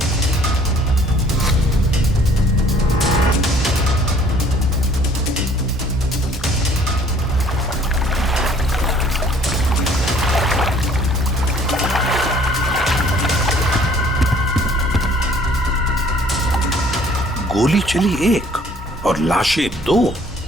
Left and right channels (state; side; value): normal; both; correlation 0.58